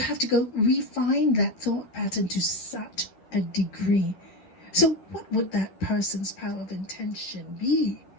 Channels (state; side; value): late; right; 11 ms